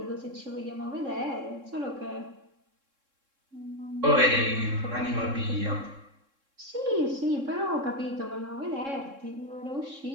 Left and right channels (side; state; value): left; late; 3.7 ms